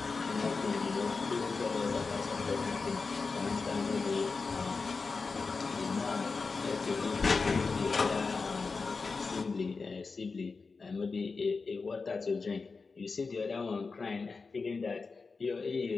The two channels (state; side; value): quieter; right; 4.4 dB